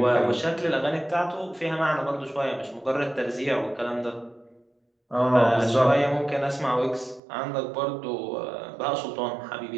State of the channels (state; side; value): drops out; left; at 7.2 s